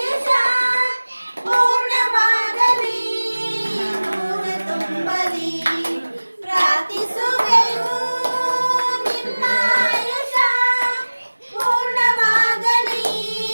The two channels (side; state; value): both; inverted; correlation -1.00